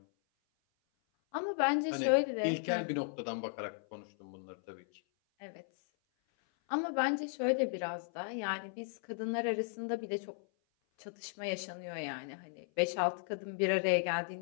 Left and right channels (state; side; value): silent; right; 54 dB below the other